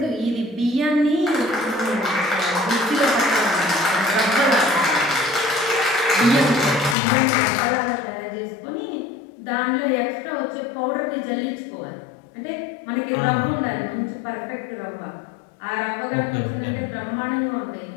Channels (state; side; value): drops out; right; at 7.0 s